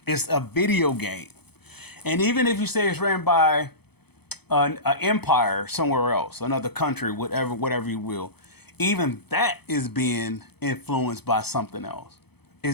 It's a video game. And even if you say it's ran by an empire somewhere else, another country, whatever you will, even that is being influenced by something else.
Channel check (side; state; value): right; late; 0.97 ms